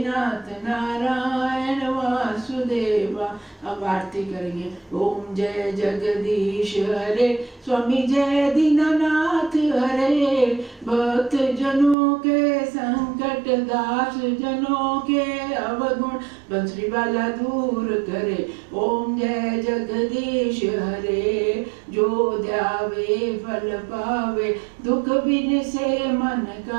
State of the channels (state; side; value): drops out; left; at 12.0 s